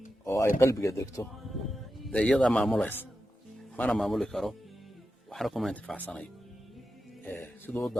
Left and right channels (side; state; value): both; normal; correlation 0.90